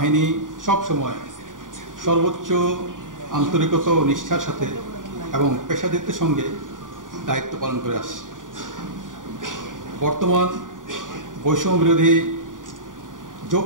সবসময় সর্বোচ্চ আন্তরিকতা ও নিষ্ঠার সাথে এবং পেশাদারিত্বের সঙ্গে দায়িত্ব পালন করে আসছে। বর্তমান বৈষম্য বিরোধী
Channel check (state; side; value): late; left; 0.88 ms